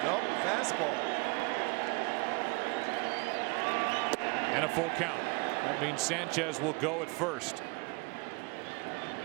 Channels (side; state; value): left; quieter; 28.8 dB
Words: Nope, fastball. And a full count. That means Sanchez will go at first.